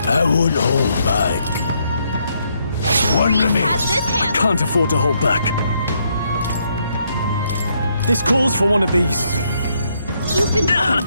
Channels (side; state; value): both; inverted; correlation -0.74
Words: I won't hold back. One Reese remains. has this hand. Can't afford to hold back. This calls for one of these. You've been burned.